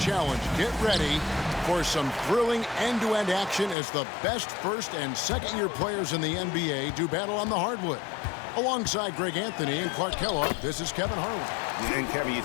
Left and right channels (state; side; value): drops out; right; at 3.8 s